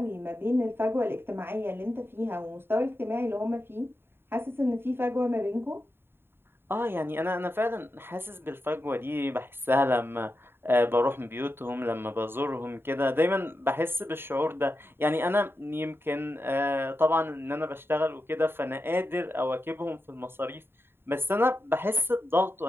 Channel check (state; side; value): late; left; 0.11 ms